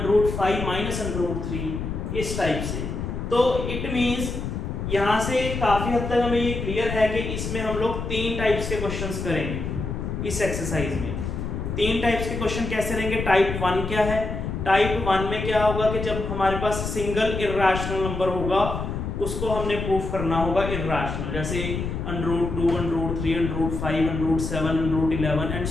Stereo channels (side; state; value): left; noise; rumble, 4 dB below the sound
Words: - √3 इस टाइप से। तो इट मींस यहाँ से काफी हद तक हमें ये क्लियर है कि इसमें हम लोग 3 टाइप्स के क्वेश्चंस करेंगे इस एक्सरसाइज में। 3 टाइप्स के क्वेश्चन कैसे रहेंगे। टाइप 1 क्या है, टाइप 1 में क्या होगा कि जब हमारे पास सिंगल इरेशनल नंबर होगा उसको हमने प्रूफ करना होगा इरेशनल, जैसे √2, √3, √5, √7, √11 एंड